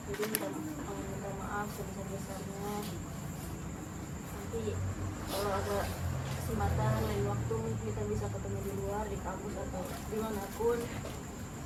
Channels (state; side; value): identical; both; correlation 1.00